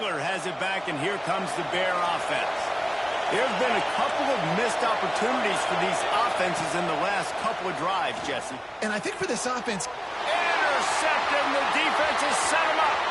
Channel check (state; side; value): identical; both; correlation 1.00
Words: has it back, and here comes the Bear offense. There's been a couple of missed opportunities for these offenses in the last couple of drives, Jesse. And I think for this offense... Intercepted, and the defense has set him up.